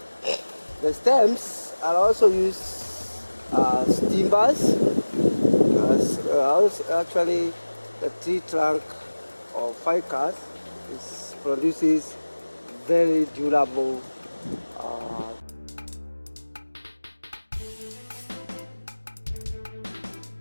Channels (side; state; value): both; inverted; correlation -1.00